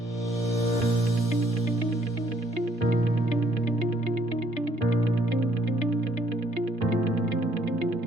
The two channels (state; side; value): normal; both; correlation 0.65